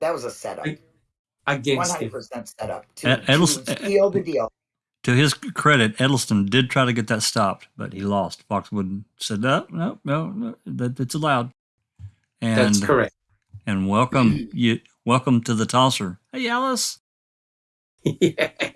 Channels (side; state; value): both; identical; correlation 1.00